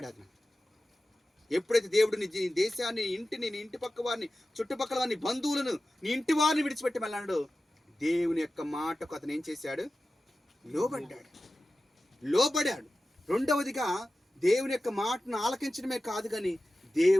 అది ఎప్పుడైతే దేవుడు నీ దేశాన్ని, ఇంటిని, నీ ఇంటి పక్క వారిని, చుట్టుపక్కల వారిని, బంధువులను, నీ ఇంటి వారిని విడిచిపెట్టి వెళ్ళాడు, దేవుని యొక్క మాటకు అతను ఏం చేశాడు? లోబడాడు. రెండవదిగా దేవుని యొక్క మాటను ఆలకించడమే కాదు కానీ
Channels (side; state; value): both; normal; correlation 0.94